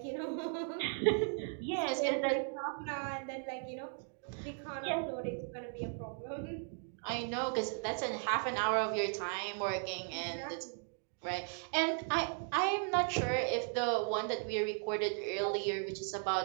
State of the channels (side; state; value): left; silent; 53 dB below the other